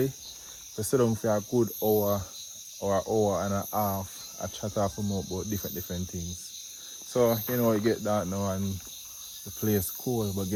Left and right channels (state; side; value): identical; both; correlation 1.00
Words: we sit down for a good hour or an hour and a half. I chat off about different things. So, you know, you get that now and the place cool. But